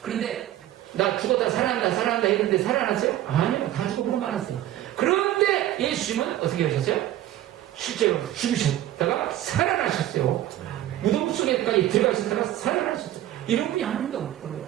그런데 나 죽었다 살아난다 했는데 살아났어요? 아니요, 다 죽어보고 말았어요. 그런데 예수님은 어떻게 하셨어요? 실제로 죽으셨다가 살아나셨어요. 무덤 속에까지 들어가셨다가 살아나셨어요. 이런 분이 한 명도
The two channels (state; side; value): quieter; left; 13.4 dB